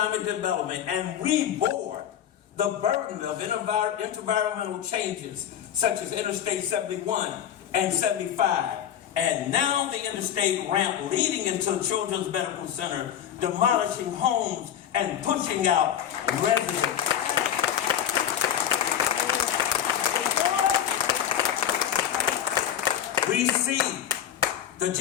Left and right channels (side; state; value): right; quieter; 9.9 dB